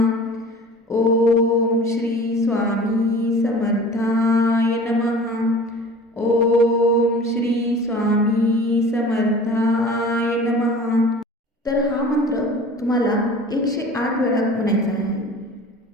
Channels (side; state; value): both; normal; correlation 0.42